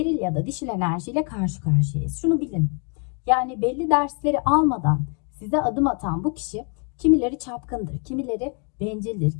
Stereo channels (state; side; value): quieter; right; 38.2 dB